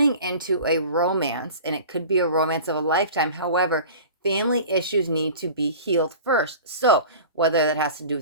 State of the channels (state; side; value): inverted; both; correlation -0.39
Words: into a romance, and it could be a romance of a lifetime. However, family issues need to be healed first. So whether that has to do